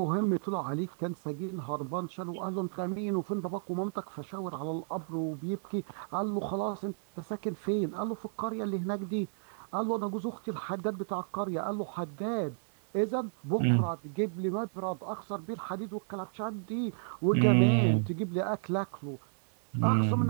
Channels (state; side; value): silent; left; digital silence